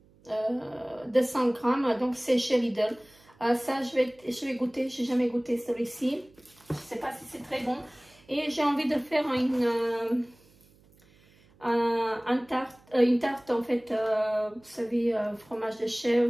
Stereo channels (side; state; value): right; noise; hum, 29 dB below the sound